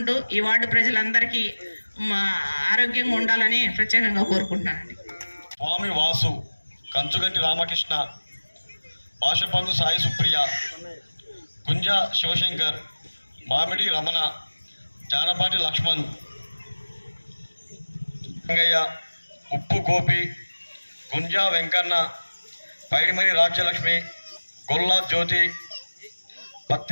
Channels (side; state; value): both; inverted; correlation -1.00